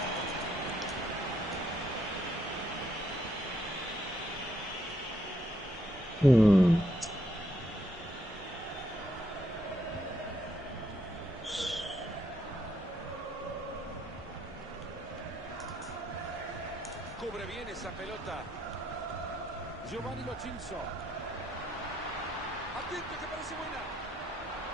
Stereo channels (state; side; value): normal; both; correlation 0.74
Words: Cubre bien esa pelota. Giovanni Lo Celso. Atento que parece buena.